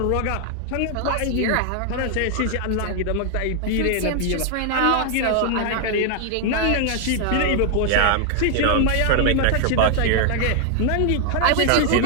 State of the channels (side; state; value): both; different; correlation 0.00